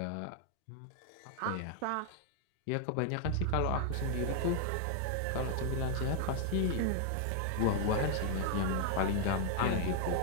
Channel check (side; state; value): both; different; correlation 0.00